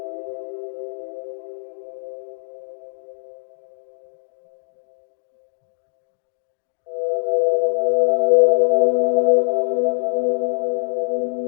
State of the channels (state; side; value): silent; right; digital silence